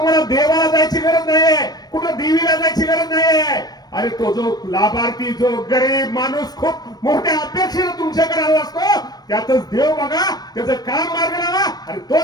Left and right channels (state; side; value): late; right; 0.19 ms